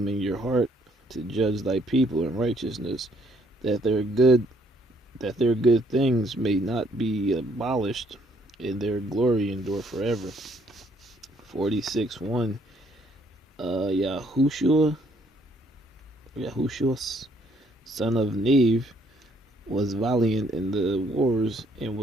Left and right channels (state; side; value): normal; both; correlation 0.67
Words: in your heart to judge thy people in righteousness, that their good things may not be abolished, and their glory endure forever. 46:1 Yahushua, son of Neve, was valiant in the wars, and